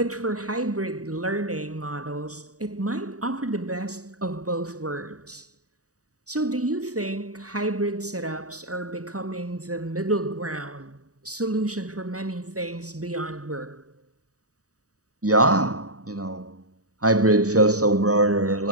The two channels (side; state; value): left; late; 0.66 ms